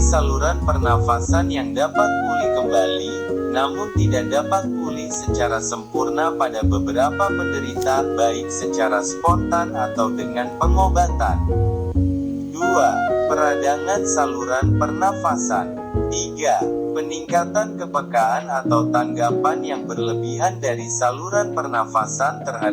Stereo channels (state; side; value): identical; both; correlation 1.00